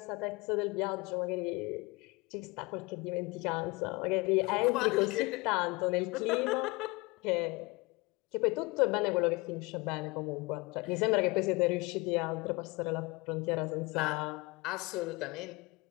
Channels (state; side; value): quieter; right; 25.1 dB